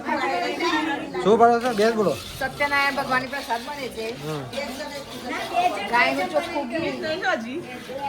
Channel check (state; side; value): identical; both; correlation 1.00